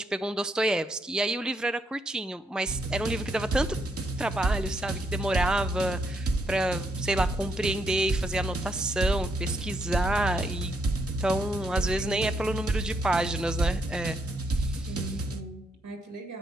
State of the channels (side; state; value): both; normal; correlation 0.76